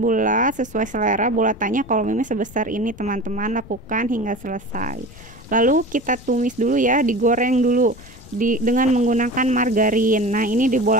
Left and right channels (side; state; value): left; noise; rumble, 20 dB below the sound